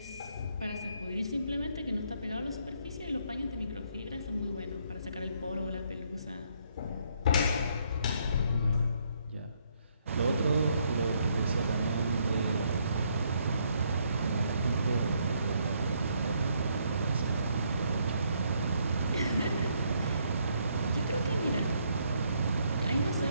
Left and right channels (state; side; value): inverted; both; correlation -0.71